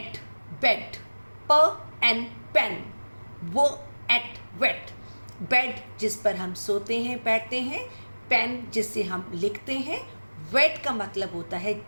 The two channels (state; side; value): inverted; both; correlation -1.00